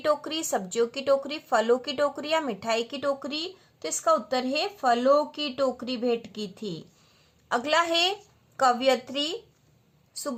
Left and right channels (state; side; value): identical; both; correlation 1.00